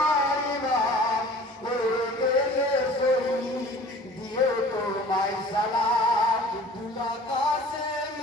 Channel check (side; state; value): both; normal; correlation 0.46